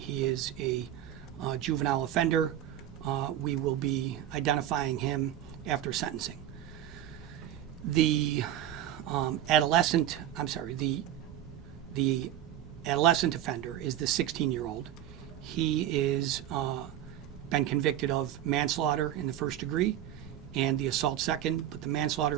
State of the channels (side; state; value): left; quieter; 11.8 dB